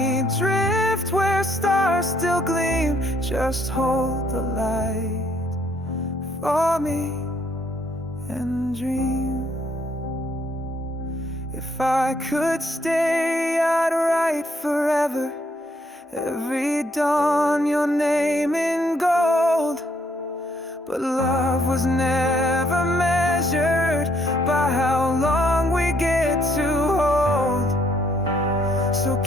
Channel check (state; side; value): normal; both; correlation 0.69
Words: drift where stars still gleam. Just hold the light for me and dream. If I could stay, I'd write forever, every dawn your name in gold. But love was never measured by how long we get to hold. So